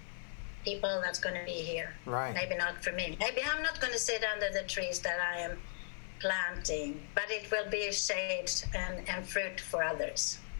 people that's going to be here. Right. Maybe not for me. Maybe I'm not going to sit under the trees that I am planting, but it will be shade and fruit for others.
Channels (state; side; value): silent; right; 53 dB below the other